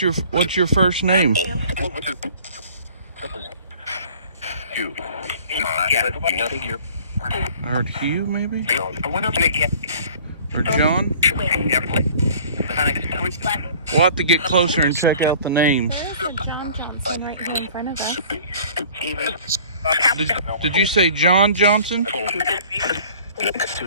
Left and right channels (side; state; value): both; inverted; correlation -0.49